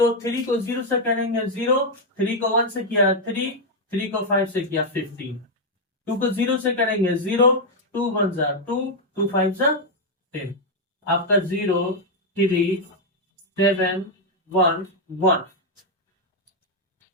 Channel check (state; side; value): normal; both; correlation 0.00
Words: 3 को 0 से करेंगे 0, 3 को 1 से किया 3, 3 को 5 से किया 15, 2 को 0 से करेंगे 0, 2 1 जा 2, 2 5 जा 10, आपका 0 3 7 1 1।